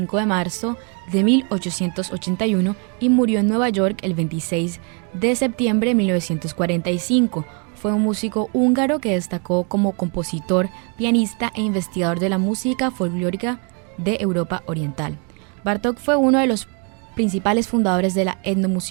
de marzo de 1881 y murió en Nueva York el 26 de septiembre de 1945. Fue un músico húngaro que destacó como compositor, pianista e investigador de la música folclórica de Europa Oriental. Bartók fue uno de los principales fundadores de la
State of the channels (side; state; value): left; quieter; 35.9 dB